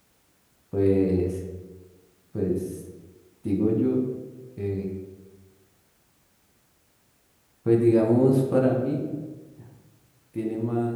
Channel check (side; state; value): both; identical; correlation 1.00